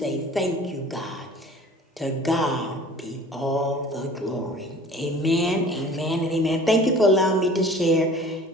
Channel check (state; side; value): normal; both; correlation 0.46